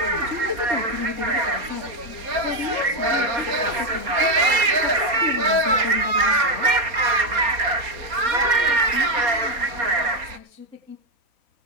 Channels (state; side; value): late; left; 4.2 ms